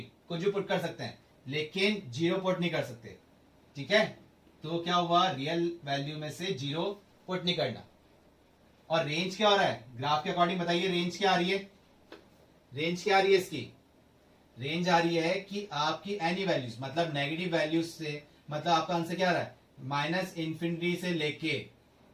कुछ भी पुट कर सकते हैं, लेकिन जीरो पुट नहीं कर सकते, ठीक है। तो क्या हुआ, रियल वैल्यू में से जीरो पुट नहीं करना। और रेंज क्या हो रहा है ग्राफ के अकॉर्डिंग, बताइए रेंज क्या आ रही है, रेंज क्या आ रही है इसकी, रेंज आ रही है कि आपकी एनी वैल्यूज, मतलब नेगेटिव वैल्यूज से, मतलब आपका आंसर क्या आ रहा है, माइनस इन्फिनिटी से लेके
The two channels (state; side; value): identical; both; correlation 1.00